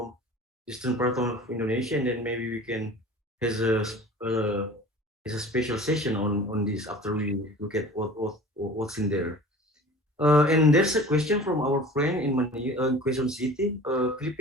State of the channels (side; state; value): both; normal; correlation 0.42